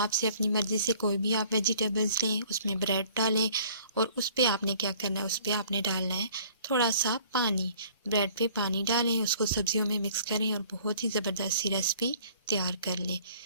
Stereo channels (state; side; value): inverted; both; correlation -0.54